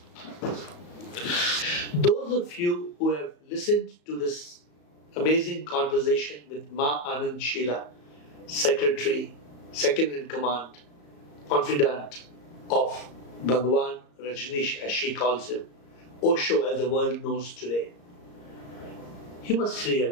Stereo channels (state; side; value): late; right; 34 ms